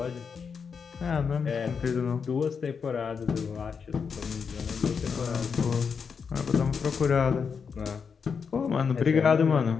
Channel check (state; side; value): quieter; right; 6.0 dB